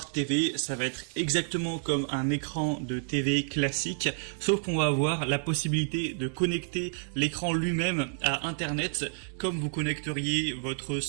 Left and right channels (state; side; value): silent; left; digital silence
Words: TV, ça va être exactement comme un écran de TV classique, sauf qu'on va avoir la possibilité de connecter l'écran lui-même à Internet, comme vous connecteriez votre